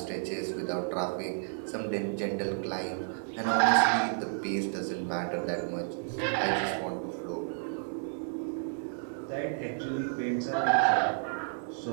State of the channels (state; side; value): silent; left; digital silence